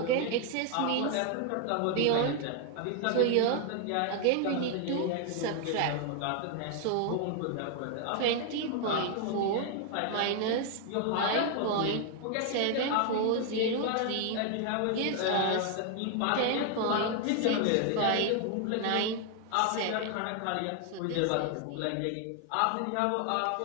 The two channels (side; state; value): both; different; correlation 0.00